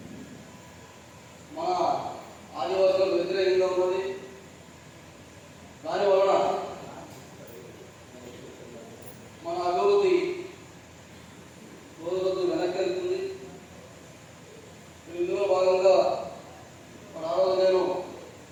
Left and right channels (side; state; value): both; identical; correlation 1.00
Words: మన ఆదివాసులకు వ్యతిరేకంగా ఉన్నది. దానివలన మన అభివృద్ధి రోజు రోజు వెనక్కి వెళ్తుంది. ఇందులో భాగంగా మన ఆ రోజు నేను